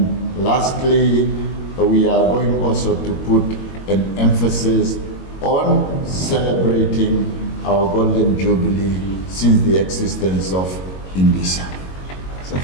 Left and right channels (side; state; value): right; late; 22 ms